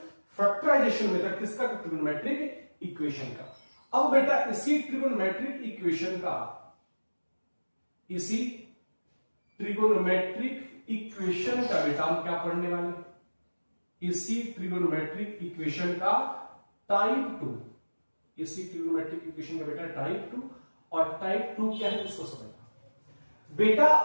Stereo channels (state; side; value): inverted; both; correlation -1.00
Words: factorization method किसका? ट्रिगोनोमेट्रिक इक्वेशन का। अब बेटा इसी ट्रिगोनोमेट्रिक इक्वेशन का, इसी ट्रिगोनोमेट्रिक इक्वेशन का बेटा हम क्या पढ़ने वाले? इसी ट्रिगोनोमेट्रिक इक्वेशन का टाइप 2, इसी ट्रिगोनोमेट्रिक इक्वेशन का बेटा टाइप 2, और टाइप 2 क्या है उसको समझना बेटा।